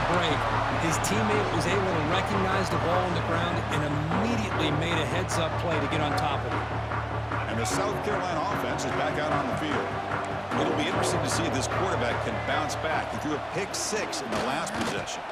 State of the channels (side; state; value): both; identical; correlation 1.00